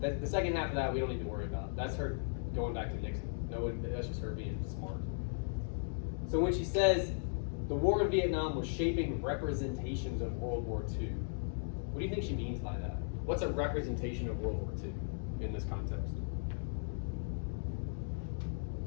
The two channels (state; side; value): silent; right; digital silence